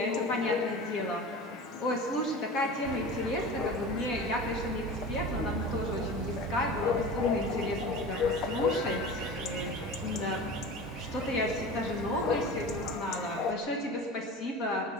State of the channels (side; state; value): both; normal; correlation 0.34